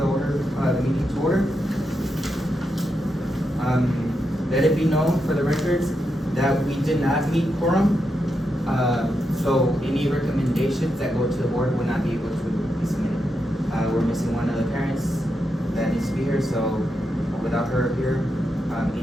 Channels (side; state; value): both; normal; correlation 0.85